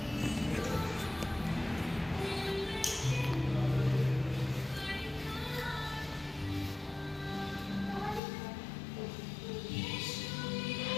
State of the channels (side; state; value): right; drops out; at 8.2 s